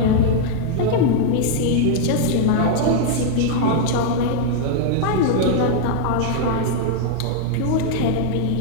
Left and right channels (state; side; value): different; both; correlation -0.01